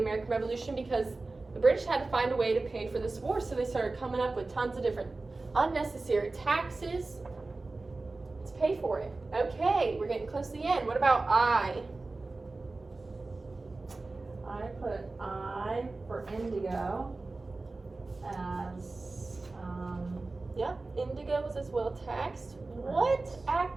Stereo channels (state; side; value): quieter; left; 3.4 dB